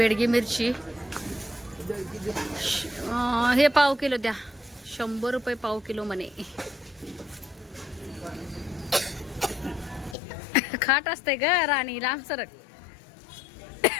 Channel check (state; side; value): drops out; right; at 10.2 s